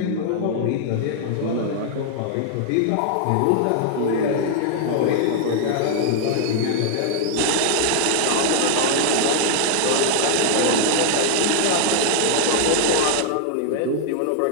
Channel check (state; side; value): different; both; correlation 0.00